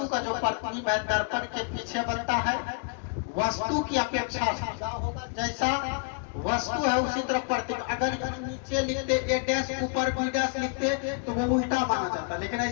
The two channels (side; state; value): right; quieter; 35.9 dB